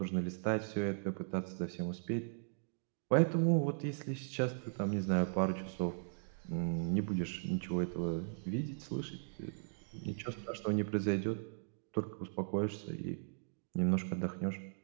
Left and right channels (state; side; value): silent; left; digital silence